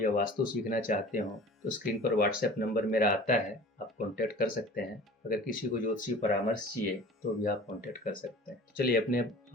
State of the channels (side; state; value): both; normal; correlation 0.42